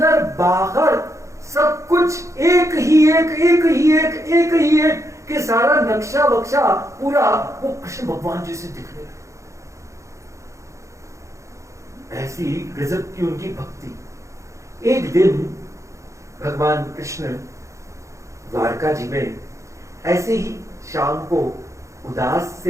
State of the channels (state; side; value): late; left; 0.15 ms